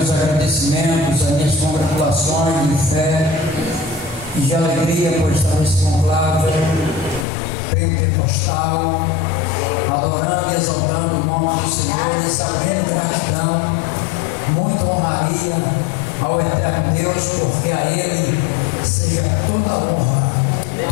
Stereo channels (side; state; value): right; drops out; at 7.2 s